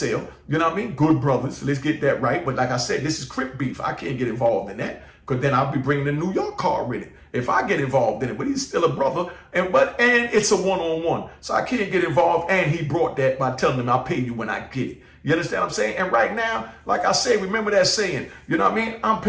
You know what I mean? Good brothers. Let's get that right. But like I said, this is Crip beef. I can't get involved in that because then I'll be bringing the New York car with it if I get involved in it. But he's still a brother, and it's a one-on-one, so I can't get involved. And he brought that by telling him I'll pay you when I get it. You understand what I'm saying? And right now, like I say, remember that saying, you know what I mean? I'm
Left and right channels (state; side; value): identical; both; correlation 1.00